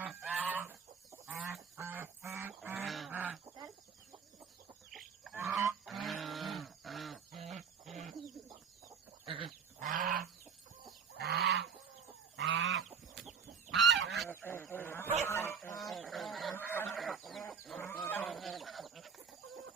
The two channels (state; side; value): quieter; left; 6.3 dB